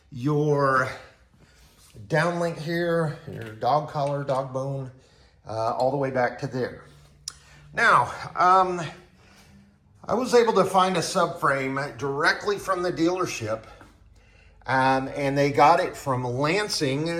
your downlink here, your dog collar, dog bone, all the way back to there. Now, I was able to find a subframe directly from the dealership. And they got it from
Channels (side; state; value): both; identical; correlation 1.00